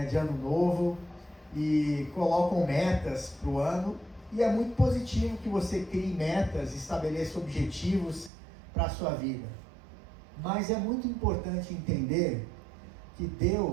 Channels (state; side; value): drops out; left; at 8.3 s